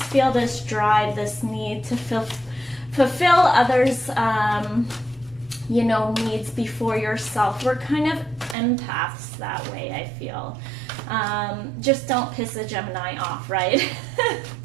feel this drive, this need to fulfill others' you know, needs before yourself. We're kind of empaths that way, I feel. Just don't piss a Gemini off, right?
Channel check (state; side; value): drops out; left; at 8.6 s